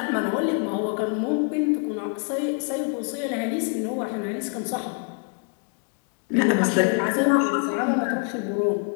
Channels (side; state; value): right; quieter; 40.0 dB